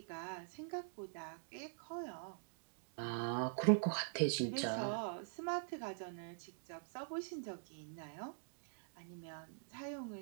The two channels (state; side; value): silent; left; digital silence